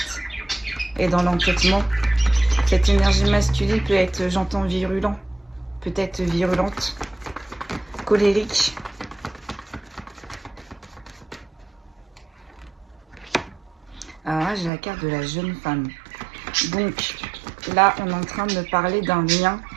et dans l'entêtement. Cette énergie masculine peut être, j'entends, virulent, peut-être virulente, colérique. Alors là, j'ai la carte de la jeune femme. Donc là, on est en train de me parler d'un lien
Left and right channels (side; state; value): left; drops out; at 14.7 s